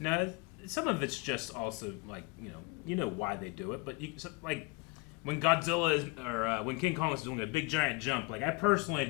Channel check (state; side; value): quieter; right; 26.6 dB